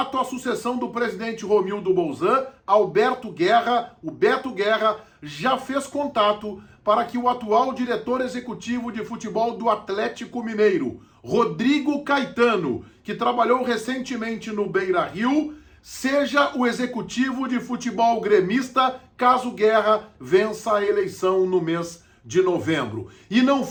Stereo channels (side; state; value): both; identical; correlation 1.00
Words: à sucessão do presidente Romildo Bolzan, Alberto Guerra, o Beto Guerra, já fez contato para que o atual diretor executivo de futebol do Atlético Mineiro, Rodrigo Caetano, que trabalhou recentemente no Beira-Rio, seja o executivo de futebol gremista caso Guerra vença a eleição no mês de novembro. E não